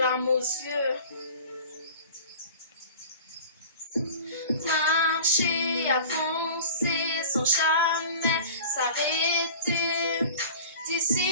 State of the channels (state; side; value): inverted; both; correlation -0.40